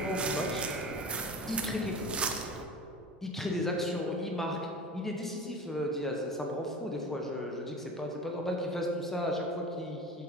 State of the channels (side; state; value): both; normal; correlation 0.34